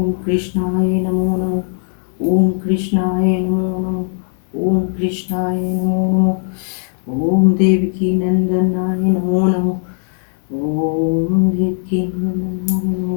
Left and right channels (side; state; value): right; silent; digital silence